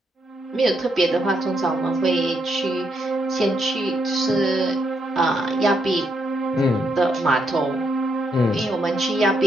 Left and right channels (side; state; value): both; normal; correlation 0.78